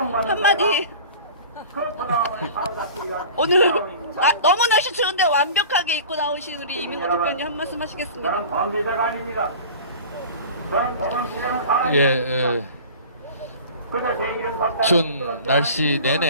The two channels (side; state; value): both; inverted; correlation -0.40